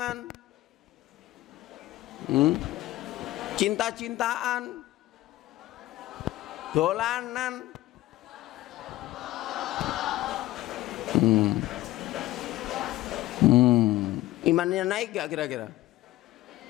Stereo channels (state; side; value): quieter; right; 16.8 dB